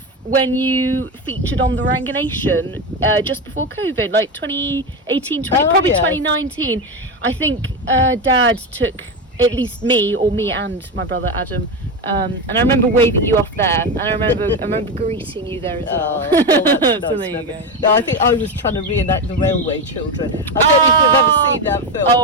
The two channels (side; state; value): both; normal; correlation 0.16